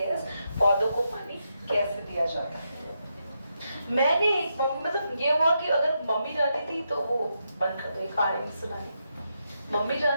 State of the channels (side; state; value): both; inverted; correlation -0.83